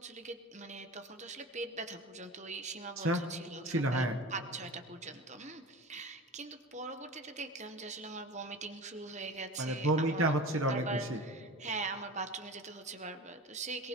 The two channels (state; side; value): normal; both; correlation 0.34